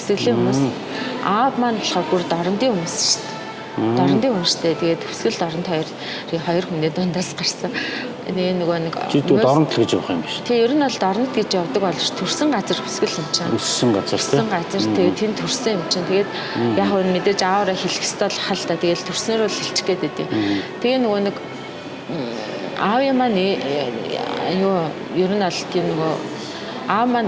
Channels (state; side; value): identical; both; correlation 1.00